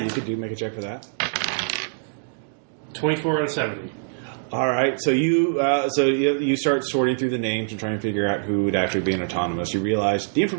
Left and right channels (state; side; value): silent; left; digital silence